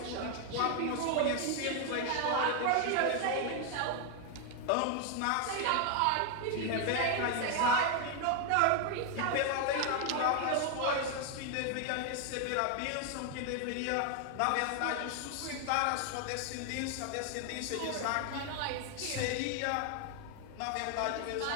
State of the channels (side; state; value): both; different; correlation 0.01